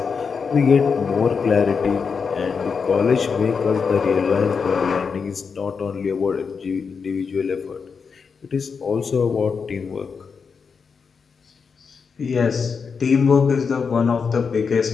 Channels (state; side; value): quieter; right; 5.7 dB